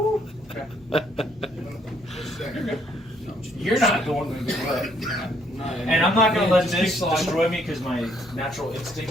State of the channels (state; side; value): normal; both; correlation 0.67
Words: Okay. You're good. You're not going to do it. And I'm not gonna let this destroy me because my natural